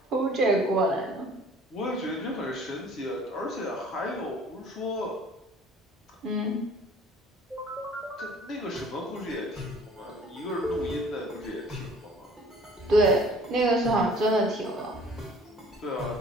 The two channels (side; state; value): both; normal; correlation 0.51